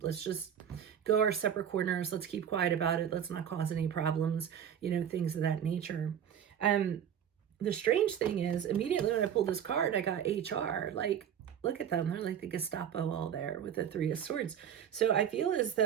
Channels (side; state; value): left; quieter; 9.0 dB